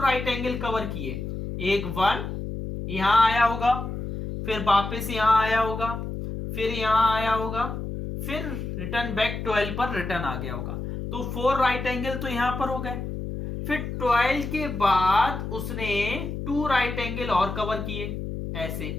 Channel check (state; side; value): noise; left; hum, 5 dB below the sound